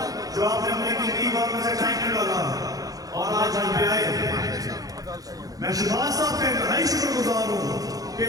जो आपने अपने कीमती वक्त में से टाइम निकाला और आज यहाँ पे आए। मैं शहबाज साहब का इंतहाई शुक्रगुजार हूँ कि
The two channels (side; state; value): left; late; 0.18 ms